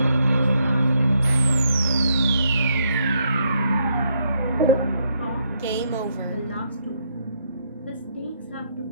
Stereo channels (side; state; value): both; inverted; correlation -0.75